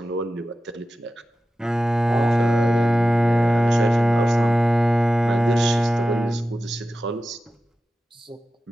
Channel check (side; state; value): both; normal; correlation 0.93